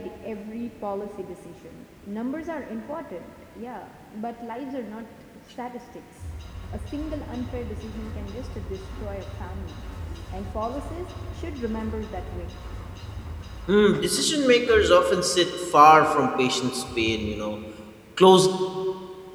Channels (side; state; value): both; identical; correlation 1.00